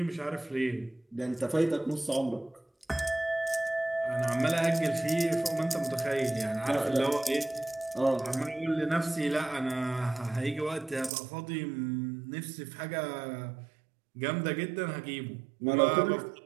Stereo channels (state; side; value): drops out; left; at 11.1 s